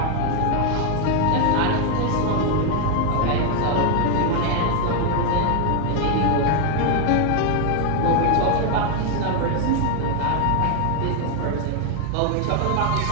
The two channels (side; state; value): both; different; correlation 0.01